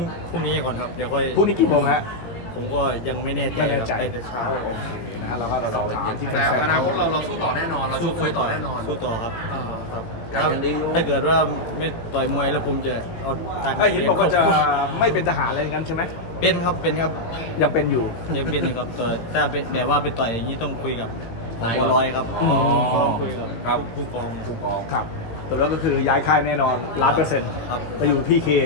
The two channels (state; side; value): late; right; 18 ms